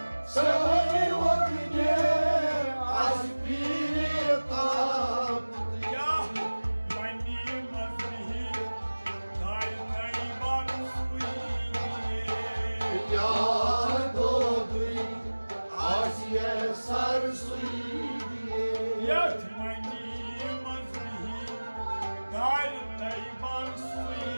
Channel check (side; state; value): both; inverted; correlation -1.00